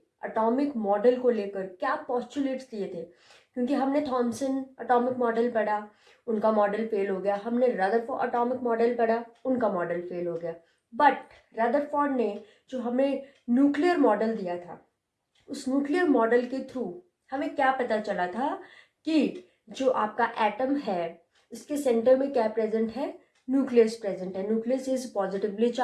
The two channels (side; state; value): both; identical; correlation 1.00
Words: एटॉमिक मॉडल को लेकर क्या पोस्टुलेट्स दिए थे। क्योंकि हमने थॉमसन एटॉमिक मॉडल पढ़ा, उनका मॉडल फेल हो गया। हमने रदरफोर्ड एटॉमिक मॉडल पढ़ा, उनका मॉडल फेल हो गया। बट रदरफोर्ड ने जो हमें न्यूक्लियर मॉडल दिया था, उस न्यूक्लियर मॉडल के थ्रू हमें क्या पता चला था कि जो आपका एटम है इसके सेंटर में क्या प्रेजेंट है, न्यूक्लियस प्रेजेंट है। Nucleus is positively